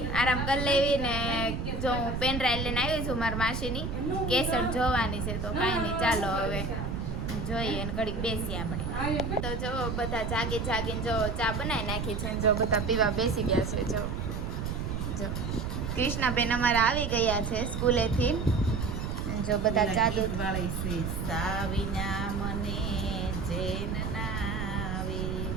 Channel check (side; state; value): right; noise; rumble, 3 dB below the sound